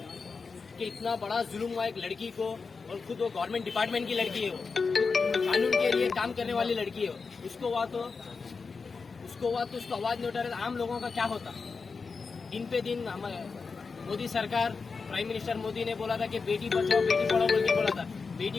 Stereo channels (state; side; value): quieter; right; 4.8 dB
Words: कि इतना बड़ा जुल्म हुआ एक लड़की को, और खुद वो गवर्नमेंट डिपार्टमेंट की लड़की है, वो कानून के लिए काम करने वाली लड़की है, उसको हुआ तो उसको हुआ तो उसको आवाज नहीं उठा रहे, आम लोगों का क्या होता। दिन पे दिन हमारे मोदी सरकार, प्राइम मिनिस्टर मोदी ने बोला था कि बेटी बचाओ बेटी पढ़ाओ बोल के बोला था।